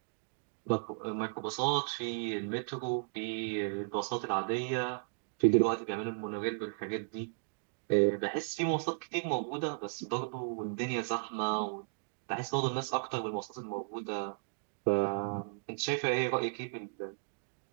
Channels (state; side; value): silent; left; digital silence